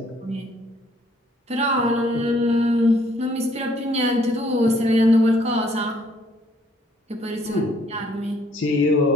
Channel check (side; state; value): both; normal; correlation 0.65